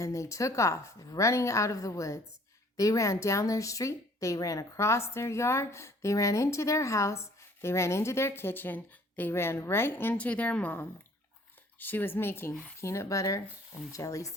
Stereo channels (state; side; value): normal; both; correlation 0.56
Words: they took off, running out of the woods. They ran down their street. They ran across their yard. They ran into their house. They ran into their kitchen. They ran right into their mom. She was making peanut butter and jelly